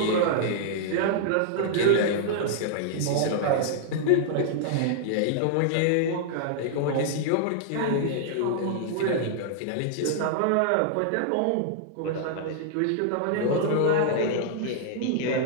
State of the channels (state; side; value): different; both; correlation -0.01